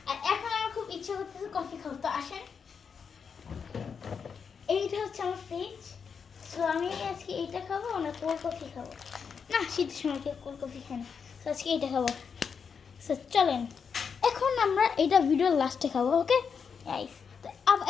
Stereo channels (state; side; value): quieter; right; 6.2 dB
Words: আর এখন আমার খুব ইচ্ছে করতেছে কফি খাবো। তো আসেন, এইটা হচ্ছে আমার ফ্রিজ। সো আমি আজকে এইটা খাবো না কোল্ড কফি খাবো না, শীতের সময় কেউ কোল্ড কফি খাই না। সো আজকে এইটা খাবো। সো চলেন এখন আমরা এইটা ভিডিওর লাস্টে খাবো। ওকে গাইস, তো